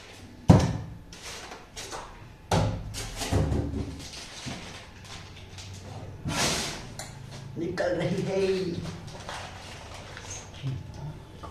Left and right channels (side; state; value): both; identical; correlation 1.00